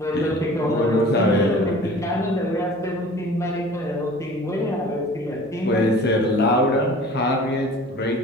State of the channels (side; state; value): right; noise; hum, 25 dB below the sound